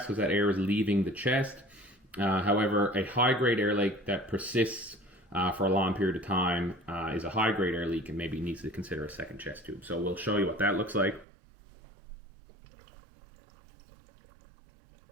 that air is leaving the chest. However, a high-grade air leak that persists for a long period of time is a high-grade air leak and maybe needs to consider a second chest tube. So we'll show you what that looks like.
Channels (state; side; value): drops out; left; at 11.2 s